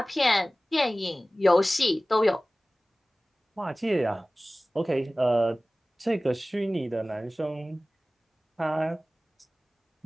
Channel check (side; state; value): both; normal; correlation 0.97